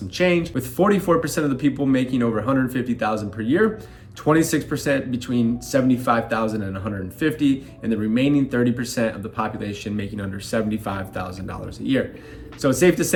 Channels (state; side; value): identical; both; correlation 1.00